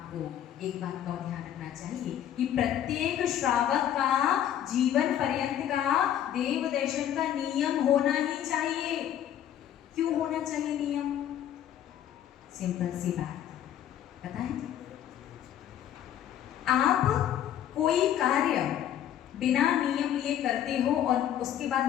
एक बात का ध्यान रखना चाहिए कि प्रत्येक श्रावक का जीवन पर्यंत का देव दर्शन का नियम होना ही चाहिए। क्यों होना चाहिए नियम? सिंपल सी बात, पता है? आप कोई कार्य बिना नियम लिए करते हो और उसके बाद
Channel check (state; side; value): quieter; right; 10.7 dB